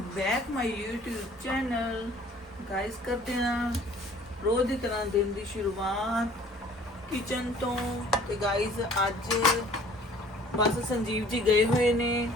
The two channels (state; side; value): normal; both; correlation 0.53